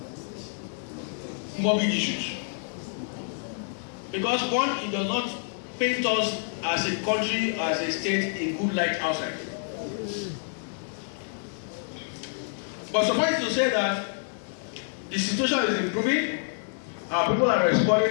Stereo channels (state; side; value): silent; right; digital silence